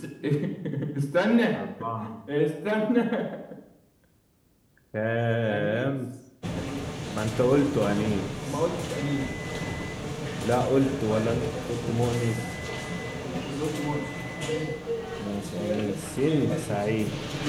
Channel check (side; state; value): both; identical; correlation 1.00